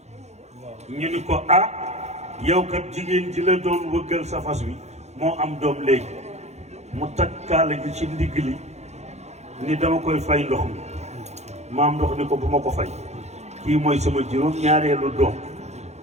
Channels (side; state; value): left; late; 0.32 ms